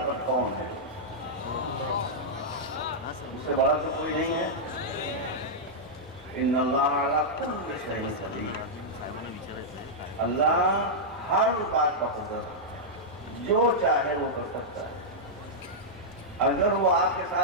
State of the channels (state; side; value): normal; both; correlation -0.07